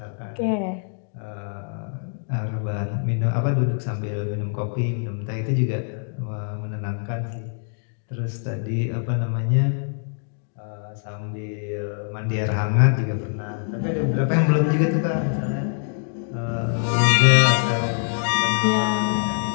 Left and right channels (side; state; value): right; silent; 61 dB below the other